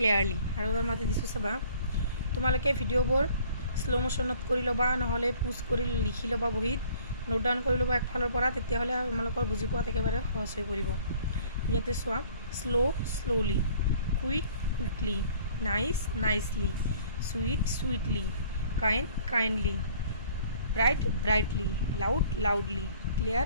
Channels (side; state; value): both; inverted; correlation -0.55